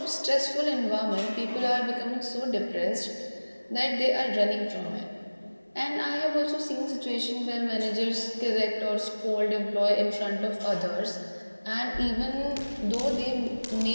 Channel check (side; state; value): both; inverted; correlation -1.00